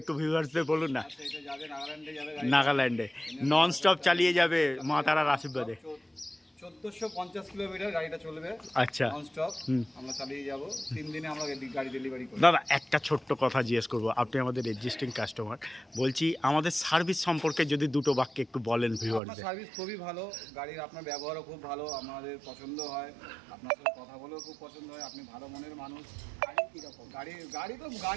একটু ভিউয়ার্সদের বলুন না। আচ্ছা, এটা যাবে নাগাল্যান্ডে যাবে গাড়ি। নাগাল্যান্ডে নন স্টপ চালিয়ে যাবে মা তারার আশীর্বাদে। 1450 কিলোমিটার গাড়িটা চলবে আচ্ছা নন স্টপ। আমরা চালিয়ে যাব 3 দিনে আমরা গাড়ি ডেলিভারি করব। দাদা একটা ছোট্ট কথা জিজ্ঞেস করবো, আপনি আমাদের এক্সিস্টিং কাস্টমার, বলছি আমাদের সার্ভিস সম্পর্কে যদি দুটো বাক্যে একটু বলেন আপনার ভিউয়ারদের। সার্ভিস খুবই ভালো, গাড়ির আপনার ব্যবহারও খুব ভালো, আমাদের পছন্দ হয়, আপনার সাথে কথা বলেও খুব পছন্দ হয়, আপনি ভালো মনের মানুষ। গাড়ি কীরকম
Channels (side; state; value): left; drops out; at 19.2 s